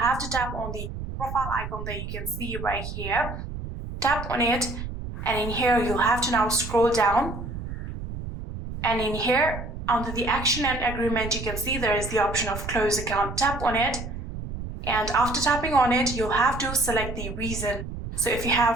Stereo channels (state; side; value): noise; right; rumble, 8 dB below the sound